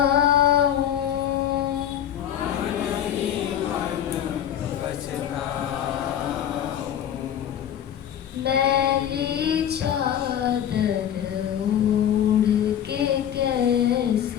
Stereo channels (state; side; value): quieter; right; 10.0 dB